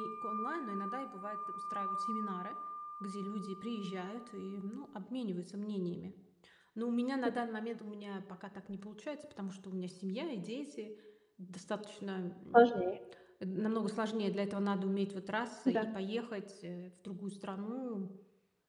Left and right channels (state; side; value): identical; both; correlation 1.00